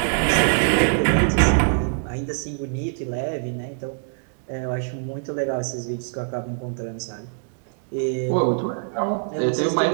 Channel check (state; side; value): silent; left; digital silence